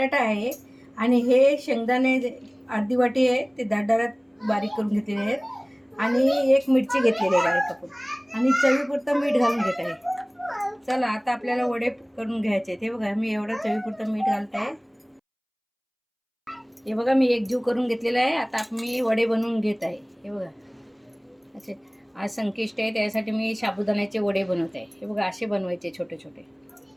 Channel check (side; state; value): both; identical; correlation 1.00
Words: आहे आणि हे शेंगदाणे अर्धी वाटी आहे, ते दारदारात बारीक करून घेतलेले आहेत आणि एक मिरची घेतलेली आहे कापून आणि चवीपुरतं मीठ घालून घेत आहे. चला आता आपल्याला वडे करून घ्यायचे आहेत. हे बघा, मी एवढं चवीपुरतं मीठ घालत आहे. हे बघा, मी एकजीव करून घेतलेला आहे. आता मी वडे बनवून घेत आहे. हे बघा, असे आज संकष्टी आहे, त्यासाठी मी साबुदाण्याचे वडे बनवत आहे. हे बघा, असे बनवायचे छोटे छोटे